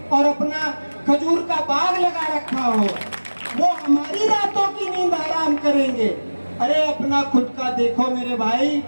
और अपना खजूर का बाग लगा रखा हो, वो हमारी रातों की नींद आराम करेंगे। अरे अपना खुद का देखो मेरे भाई,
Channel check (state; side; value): inverted; both; correlation -1.00